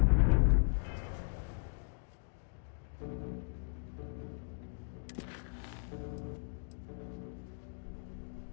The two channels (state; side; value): silent; right; digital silence